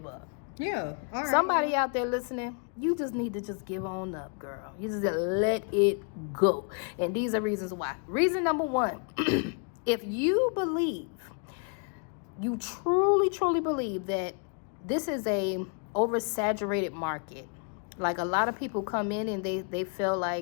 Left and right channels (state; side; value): quieter; right; 39.9 dB